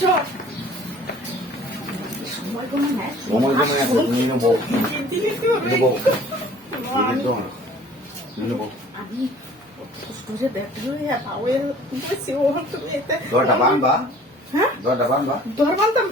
সময় কোনো নাই, সময় জন্য তুমি নেবো নেবো নেবো আমি কষ্ট করে দেখলে পাওয়ে বসে ও তুমি এতে দরটা বান্ধবা হ্যাঁ দরটা বান্ধবা দর বানতাম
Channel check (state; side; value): normal; both; correlation 0.50